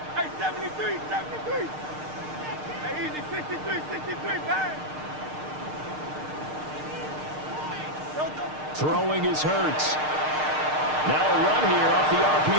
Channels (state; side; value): late; left; 6.6 ms